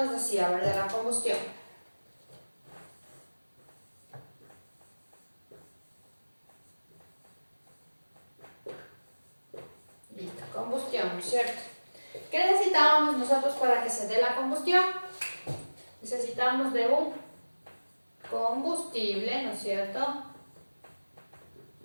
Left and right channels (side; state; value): both; inverted; correlation -1.00